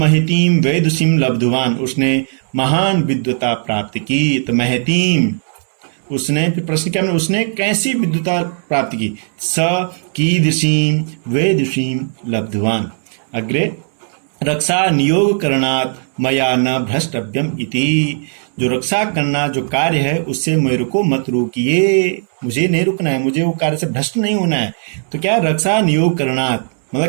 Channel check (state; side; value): silent; left; 69 dB below the other